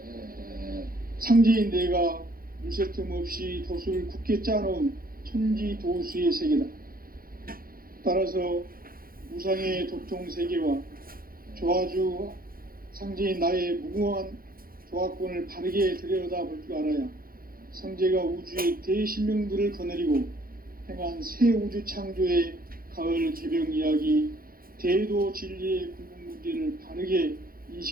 상제인 내가 물새 틈 없이 도수를 굳게 짜놓은 천지도수의 세계다. 따라서 무상의 도통 세계와 조화주 상제인 나의 무궁한 조화권을 바르게 들여다볼 줄 알아야 상제가 우주의 대신명들을 거느리고 행한 새 우주 창조의 가을 개병 이야기, 대도 진리의 궁극 문제를 바르게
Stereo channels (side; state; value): left; late; 0.42 ms